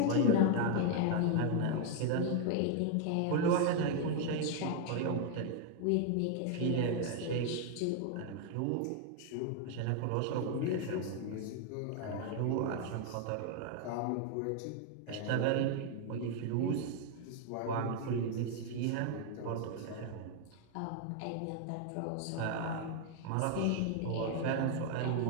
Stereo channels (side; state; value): both; different; correlation 0.00